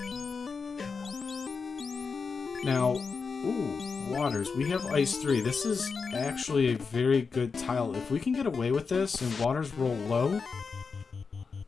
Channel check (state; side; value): quieter; right; 5.1 dB